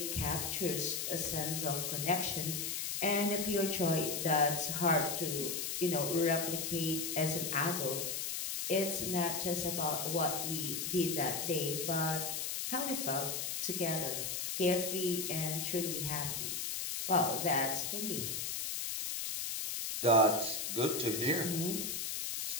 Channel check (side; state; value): left; noise; hiss, 2 dB below the sound